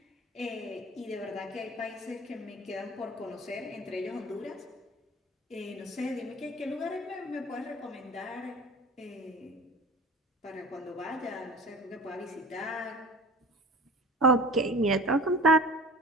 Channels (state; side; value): normal; both; correlation 0.41